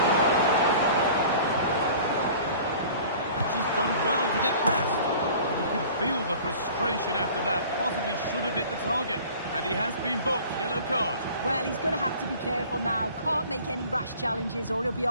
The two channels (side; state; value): both; inverted; correlation -0.46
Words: And she's done well to get past. And you can feel the frustration after that. Possibly should have hit the target. And he has been booked. Yellow card. Well, he's going to have to be careful now. Can't make any rash challenges or he'll be